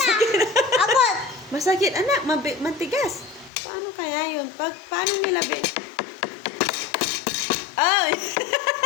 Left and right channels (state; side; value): drops out; right; at 3.5 s